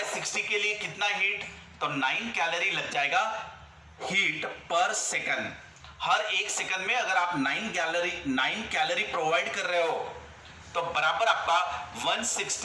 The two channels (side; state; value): both; identical; correlation 1.00